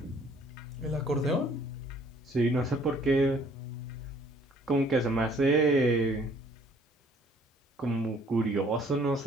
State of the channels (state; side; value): normal; both; correlation 0.59